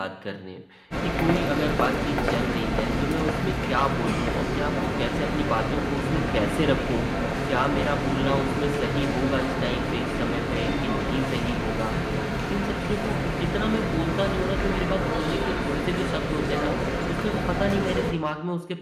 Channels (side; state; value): both; identical; correlation 1.00